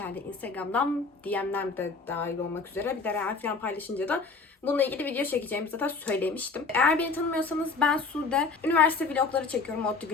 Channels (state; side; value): quieter; right; 4.4 dB